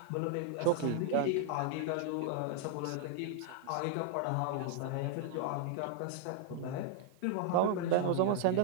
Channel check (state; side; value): different; both; correlation 0.00